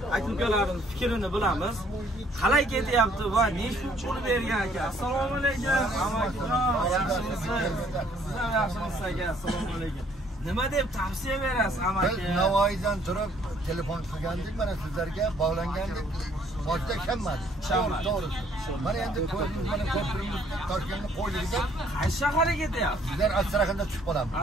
aka-ukalarning fikrini bilamiz. Qalay ketyapti va nechta pul bergan aka? Assalomu alaykum. Amakijon, yaxshimisiz? Sizlar yaxshimisiz aka? Assalomu alaykum. Nima deb tavsiya berasiz amaki? Biz Navoiydan turib telefon qilgandik, mana sizlarga bog'langandik. Boshda ishonmadik. To'g'ri. Mana endi mana ko'pirimiz Toshkentni qo'ydik. Qaysi shaharga ketyapti? Sizlar Astraxanda tushib qolamiz.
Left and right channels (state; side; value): normal; both; correlation 0.63